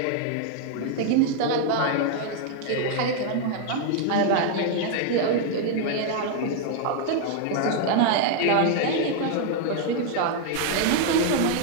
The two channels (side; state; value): both; different; correlation 0.00